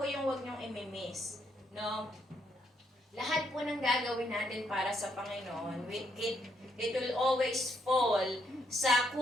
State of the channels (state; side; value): normal; both; correlation 0.75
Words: yung huwag niyong imimiss. No? Lahat po ng gagawin natin para sa Panginoon, it will always fall sa